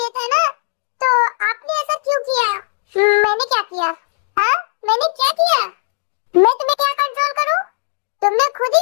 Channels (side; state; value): right; silent; digital silence